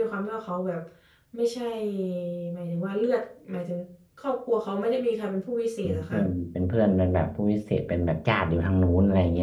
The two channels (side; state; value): both; identical; correlation 1.00